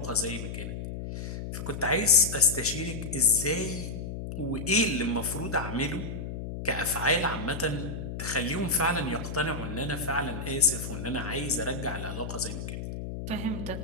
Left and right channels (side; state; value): left; noise; hum, 6 dB below the sound